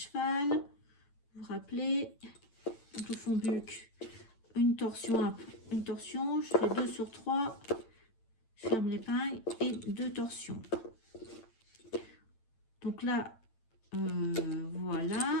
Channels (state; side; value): late; right; 8.9 ms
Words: Vous vous rappelez, donc le fond buc, une torsion, je fais 2 sur 3, je ferme l'épingle et 2 torsions. Donc là,